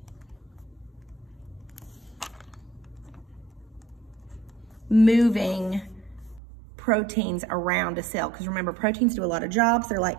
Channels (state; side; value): drops out; left; at 6.4 s